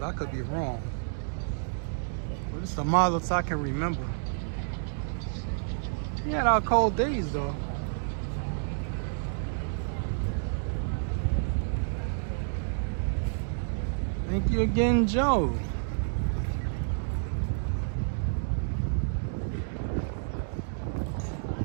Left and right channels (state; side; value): silent; left; digital silence